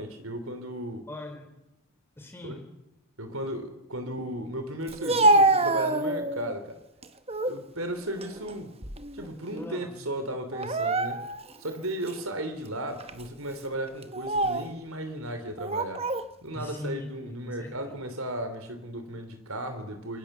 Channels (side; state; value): both; normal; correlation -0.14